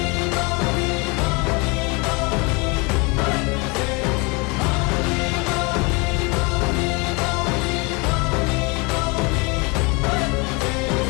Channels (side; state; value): right; quieter; 28.8 dB